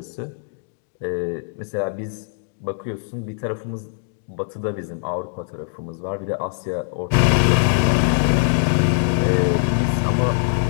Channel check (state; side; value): silent; right; digital silence